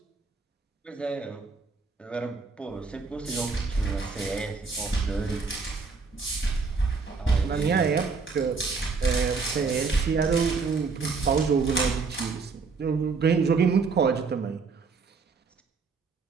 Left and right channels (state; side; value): quieter; left; 4.7 dB